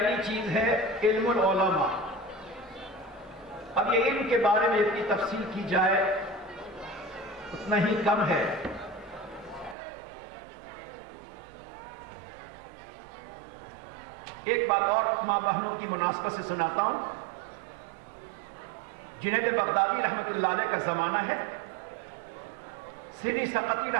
چیز ہے علم العلماء۔ اب یہ علم کے بارے میں اتنی تفصیل کی جائے اتنا ہی کم ہے۔ ایک بات اور ماں بہنوں کی مناسبت سے سناتا ہوں۔ جنید بغدادی رحمۃ اللہ علیہ کا زمانہ ہے، سیدی سقطی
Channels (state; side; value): drops out; left; at 9.8 s